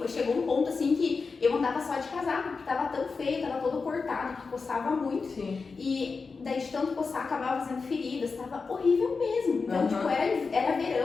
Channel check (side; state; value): right; quieter; 4.6 dB